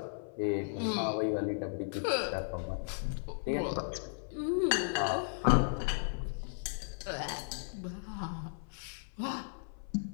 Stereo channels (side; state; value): right; silent; 54 dB below the other